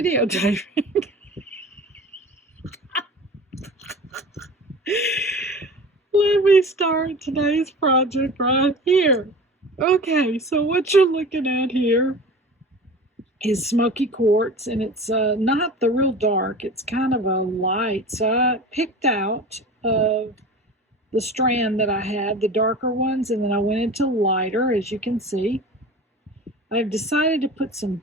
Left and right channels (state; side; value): normal; both; correlation 0.36